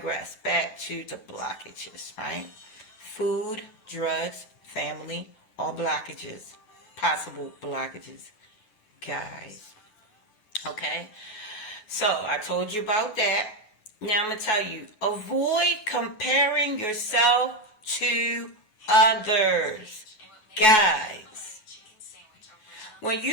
Back to the blockages, right? Food, drugs, family, all blockages, possible blockages, guys. Okay? So, I told you about that. Now, I'm going to tell you, avoid comparing yourself to others. Guys, when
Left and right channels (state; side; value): late; right; 9.4 ms